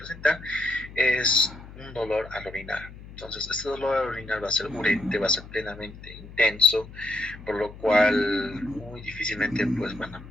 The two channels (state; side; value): noise; left; hum, 16 dB below the sound